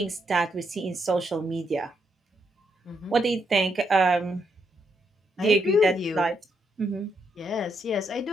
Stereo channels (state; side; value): normal; both; correlation 0.78